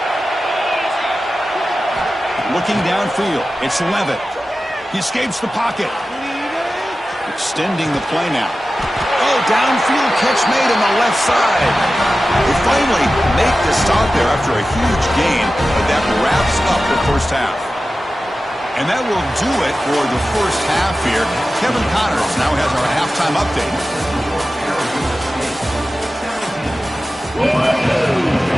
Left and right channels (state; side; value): normal; both; correlation 0.94